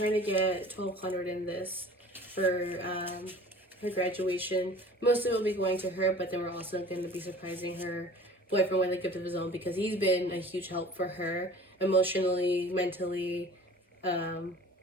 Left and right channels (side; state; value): both; normal; correlation 0.44